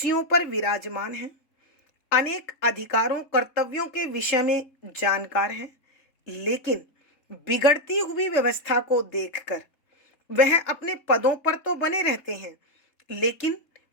पर विराजमान है, अनेक अधिकारों कर्तव्यों के विषय में जानकार है, लेकिन बिगड़ती हुई व्यवस्था को देखकर वह अपने पदों पर तो बने रहते हैं, लेकिन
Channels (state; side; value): late; right; 3.6 ms